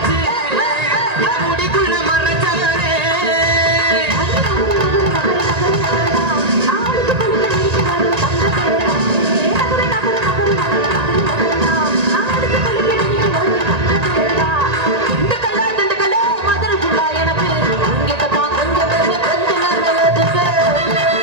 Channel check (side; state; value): left; late; 1.8 ms